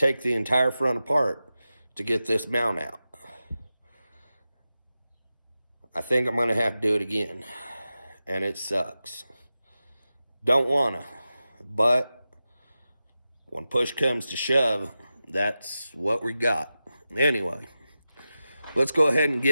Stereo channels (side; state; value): both; inverted; correlation -0.93